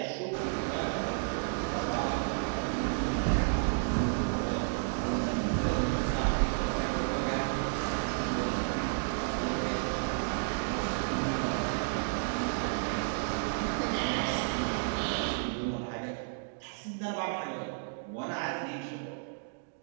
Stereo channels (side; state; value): left; silent; digital silence